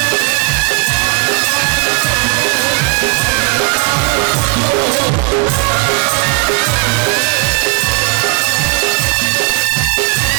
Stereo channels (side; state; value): left; quieter; 35.3 dB